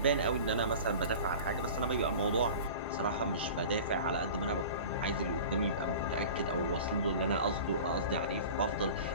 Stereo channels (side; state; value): both; inverted; correlation -0.38